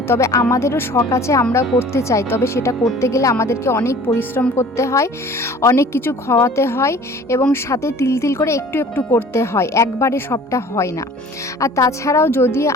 তবে আমাদেরও শখ আছে, আমরাও করতে চাই, তবে সেটা করতে গেলে আমাদেরকে অনেক পরিশ্রম করতে হয়, অনেক কিছু খাওয়াতে হয় এবং সাথে তিল তিল করে একটু একটু করতে হয়, একবারে সবটা হয় না। আর তাছাড়াও যদি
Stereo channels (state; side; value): normal; both; correlation 0.47